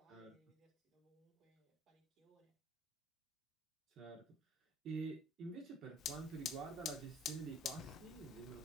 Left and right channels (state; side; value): normal; both; correlation 0.53